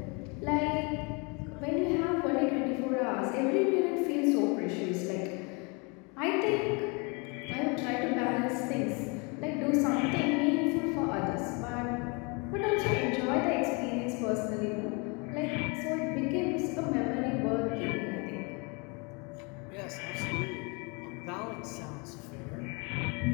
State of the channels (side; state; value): right; quieter; 31.1 dB